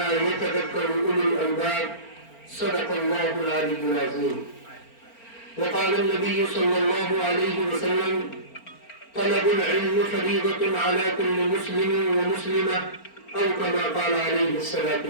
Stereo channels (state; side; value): late; right; 4.4 ms